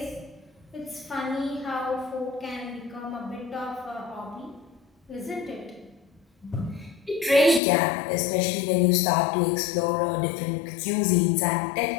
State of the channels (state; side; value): drops out; right; at 7.6 s